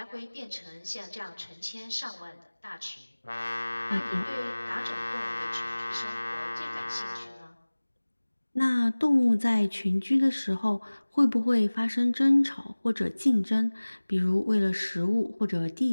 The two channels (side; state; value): both; inverted; correlation -1.00